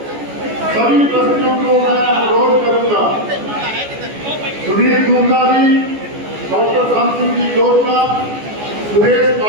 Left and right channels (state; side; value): late; left; 14 ms